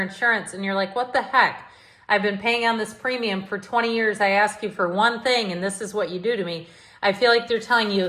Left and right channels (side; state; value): both; identical; correlation 1.00